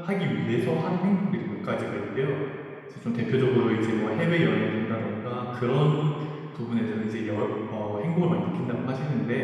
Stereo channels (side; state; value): both; identical; correlation 1.00